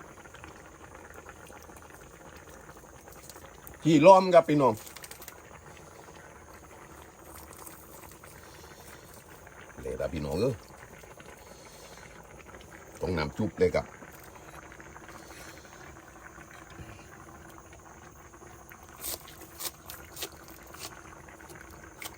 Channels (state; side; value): identical; both; correlation 1.00